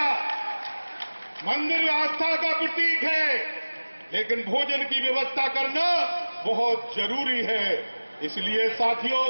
मंदिर आस्था का प्रतीक है, लेकिन भोजन की व्यवस्था करना बहुत जरूरी है। इसलिए साथियों,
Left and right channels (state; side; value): inverted; both; correlation -1.00